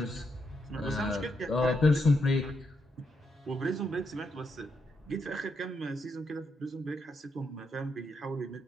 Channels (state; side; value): normal; both; correlation 0.80